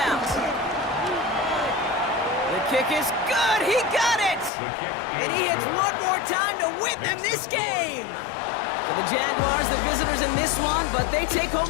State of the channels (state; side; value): drops out; right; at 4.5 s